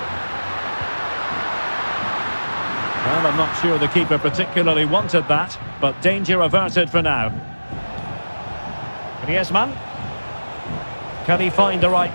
Well, I'm not sure the keeper particularly wanted that, but danger averted for now. Griezmann. Can he find the right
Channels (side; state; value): both; inverted; correlation -1.00